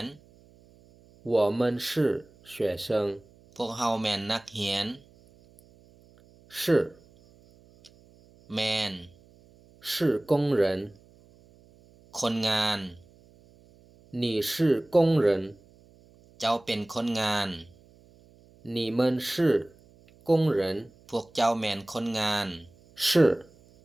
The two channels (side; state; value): right; noise; hum, 28 dB below the sound